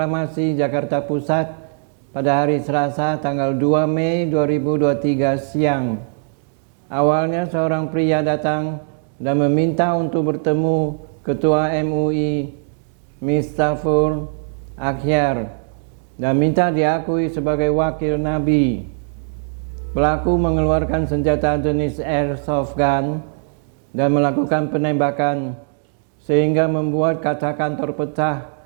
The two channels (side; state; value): left; silent; digital silence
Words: Jakarta Pusat pada hari Selasa tanggal 2 Mei 2023 siang. Awalnya seorang pria datang dan meminta untuk bertemu Ketua MUI, Miftahul Akhyar, dan minta diakui sebagai wakil Nabi. Pelaku mengeluarkan senjata jenis airsoft gun dan melakukan penembakan sehingga membuat kaca kantor pecah